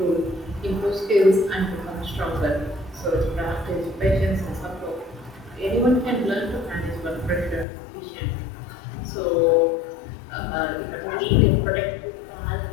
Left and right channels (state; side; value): drops out; right; at 7.7 s